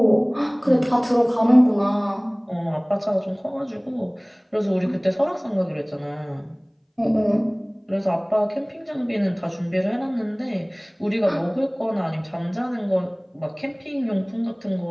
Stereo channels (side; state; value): both; identical; correlation 1.00